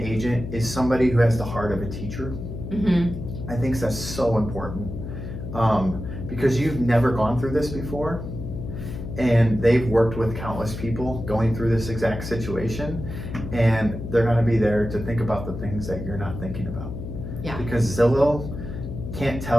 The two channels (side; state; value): left; noise; hum, 8 dB below the sound